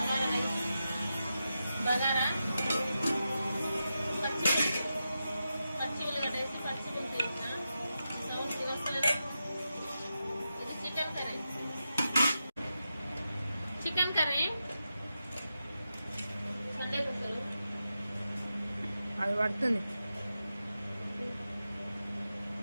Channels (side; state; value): both; inverted; correlation -0.89